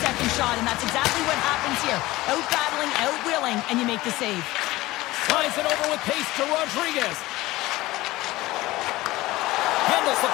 second shot, and that's exactly what happens here. Out-battling, out-willing, and you make the save. Slides it over with pace to Rodriguez. Handles the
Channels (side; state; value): right; quieter; 18.6 dB